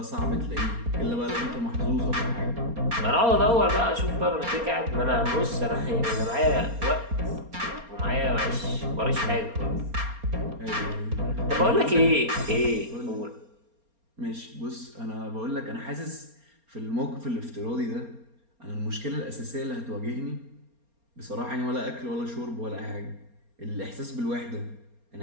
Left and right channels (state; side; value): late; left; 4.3 ms